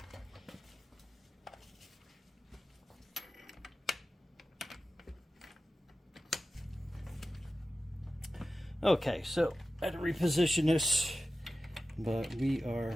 Okay, so I had to reposition this, but we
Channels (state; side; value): normal; both; correlation 0.94